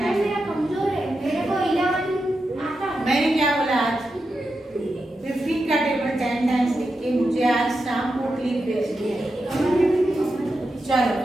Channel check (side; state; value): both; normal; correlation 0.88